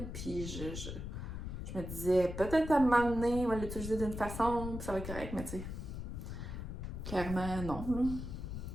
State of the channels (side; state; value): left; noise; rumble, 7 dB below the sound